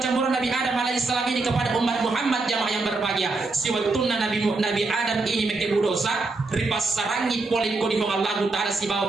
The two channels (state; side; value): quieter; left; 3.6 dB